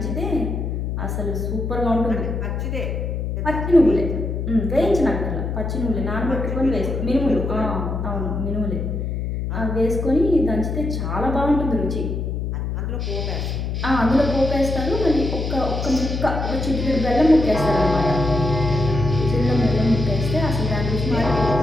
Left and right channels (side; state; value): left; noise; hum, 2 dB below the sound